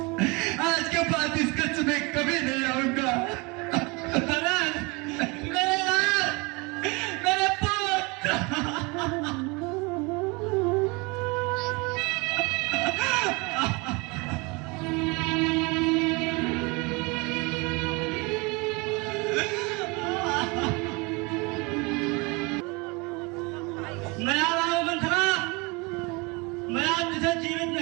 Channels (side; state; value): left; quieter; 27.5 dB